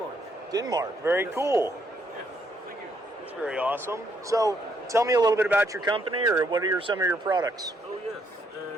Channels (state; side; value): normal; both; correlation 0.72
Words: Denmark. Very cool. Yeah, thank you. That's very awesome. So, tell me a little bit about your company, or what are some of your products? Oh, yes.